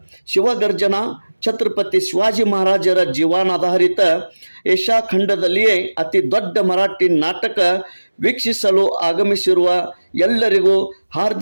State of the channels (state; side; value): inverted; both; correlation -1.00